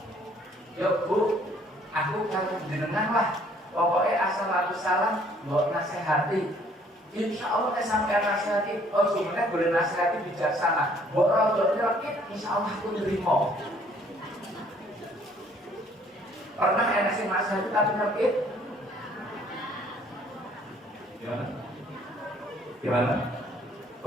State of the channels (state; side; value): normal; both; correlation 0.61